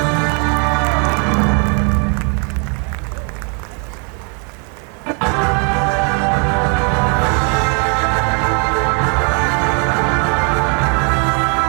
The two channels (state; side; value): quieter; left; 38.0 dB